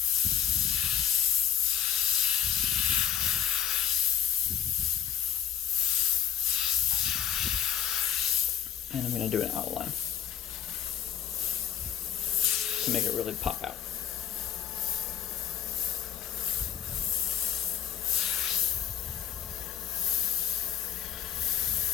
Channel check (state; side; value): quieter; right; 9.7 dB